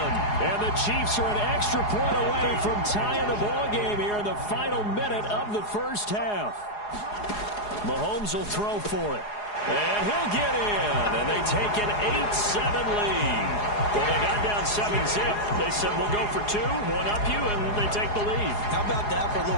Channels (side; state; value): right; late; 4.8 ms